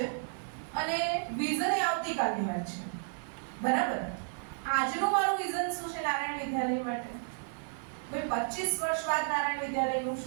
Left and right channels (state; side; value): silent; left; 56 dB below the other